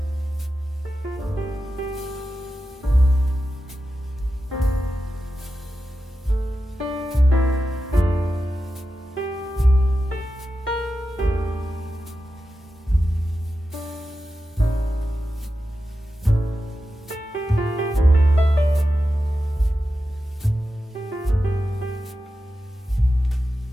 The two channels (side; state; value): both; normal; correlation 0.91